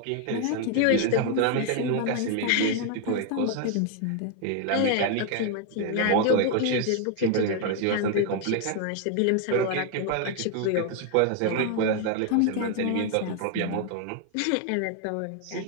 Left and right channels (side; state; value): both; different; correlation 0.01